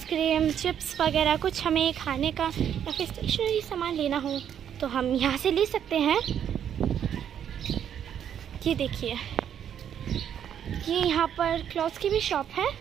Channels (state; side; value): quieter; left; 9.2 dB